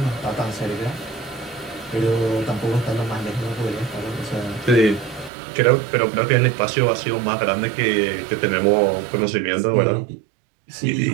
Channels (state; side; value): drops out; left; at 5.3 s